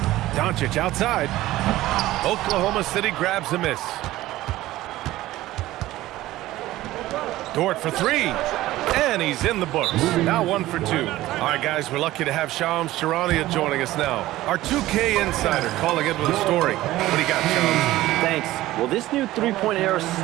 Doncic outside. Oklahoma City grabs a miss. Dort for 3. And he's in the books. Now 1 for 2. All right, guys, we're lucky to have Shams Charania joining us now. Our 2K insider calling in with a story. What do you got, Shams? Thanks. Well, this new three-point era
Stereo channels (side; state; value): left; quieter; 16.2 dB